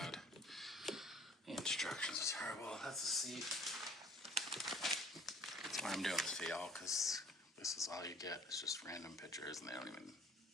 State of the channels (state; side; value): normal; both; correlation 0.52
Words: The instructions are terrible. That's the seat. That's why I'm doing this for y'all, because this is all you get. It's just random pictures and they don't even